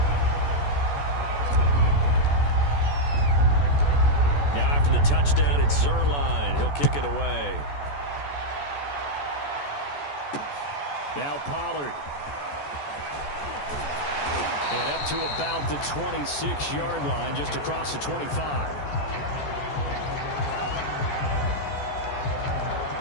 Now after the touchdown, it's Zuerlein. He'll kick it away. Now Pollard. And up to about the 26-yard line, just across the 25.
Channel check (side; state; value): right; late; 14 ms